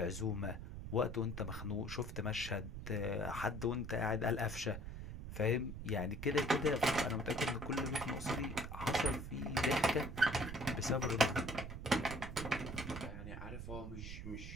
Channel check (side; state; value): right; noise; rumble, 8 dB below the sound